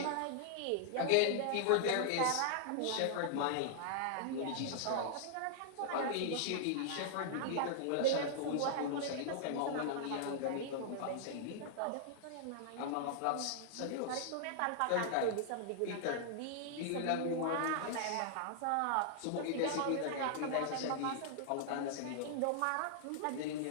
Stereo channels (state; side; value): different; both; correlation -0.01